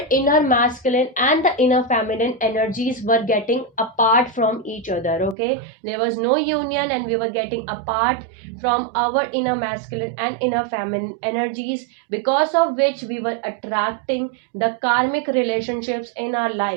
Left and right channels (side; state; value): left; drops out; at 5.4 s